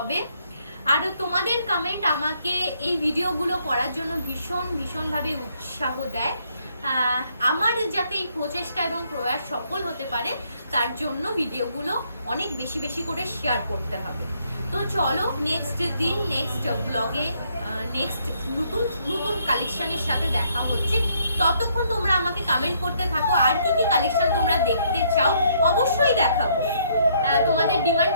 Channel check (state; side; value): inverted; both; correlation -0.69